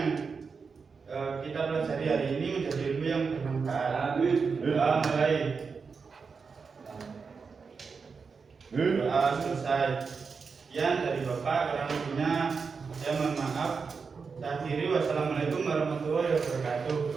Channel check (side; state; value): left; quieter; 5.2 dB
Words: kita pelajari hari ini menjadi ilmu yang bermanfaat. Doa mulai. Doa selesai. Sekian dari Bapak, kurang lebihnya saya mohon maaf. Saya akhiri, wassalamualaikum warahmatullahi wabarakatuh.